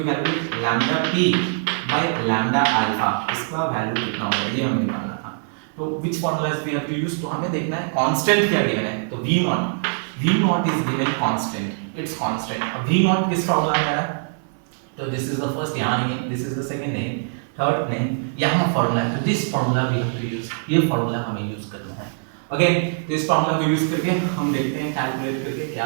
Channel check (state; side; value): silent; left; digital silence